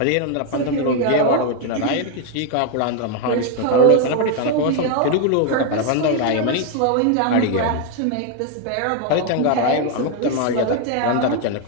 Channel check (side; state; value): both; different; correlation 0.01